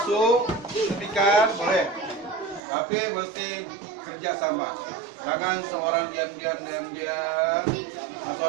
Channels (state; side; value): drops out; left; at 2.6 s